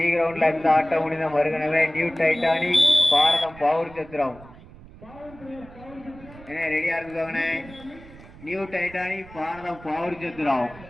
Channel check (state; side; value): noise; right; rumble, 20 dB below the sound